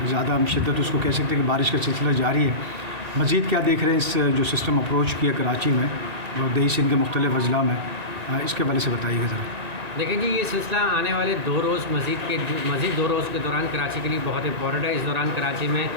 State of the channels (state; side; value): late; left; 1.9 ms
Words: ज़्यादा हम शिद्दत उसको कह सकते हैं कि बारिश का सिलसिला जारी है। मज़ीद क्या देख रहे हैं इस जो सिस्टम अप्रोच किया कराची में और दही सिंध के मुख्तलिफ़ अजला में, इसके बारे से बताइएगा ज़रा। देखें जी, ये सिलसिला आने वाले 2 रोज़ मज़ीद 2 रोज़ के दौरान कराची के लिए बहुत इंपॉर्टेंट है। इस दौरान कराची में